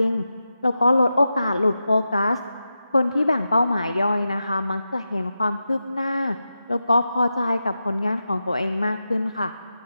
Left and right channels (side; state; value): both; inverted; correlation -0.90